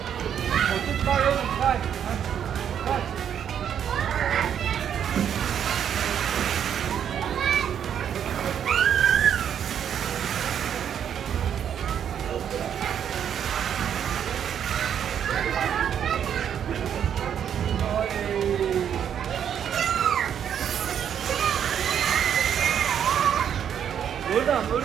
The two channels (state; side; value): quieter; left; 8.8 dB